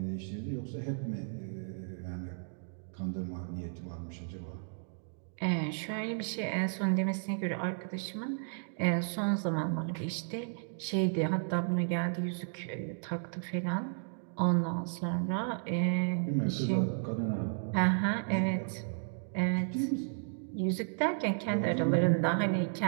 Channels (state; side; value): silent; left; digital silence